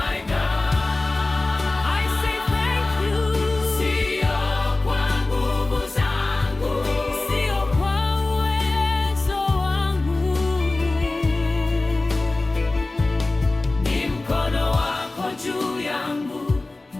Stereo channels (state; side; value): quieter; right; 3.1 dB